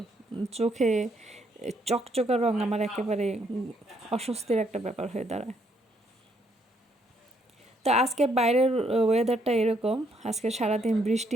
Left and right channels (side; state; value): both; normal; correlation 0.71